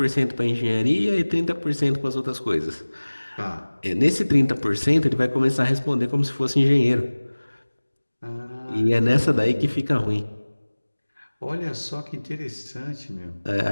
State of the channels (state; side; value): inverted; both; correlation -1.00